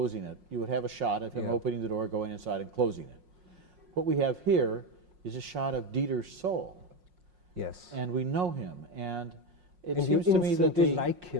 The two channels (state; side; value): late; left; 5.5 ms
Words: it, you would have a shot of him opening the door, going inside and closing it. What we have here is a shot of Dieter's soul. Yes. And we know him, and it and seems you to me that instantly like